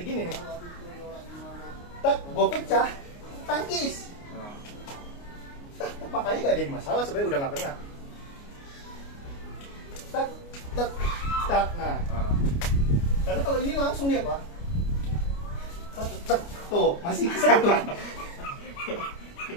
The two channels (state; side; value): late; right; 29 ms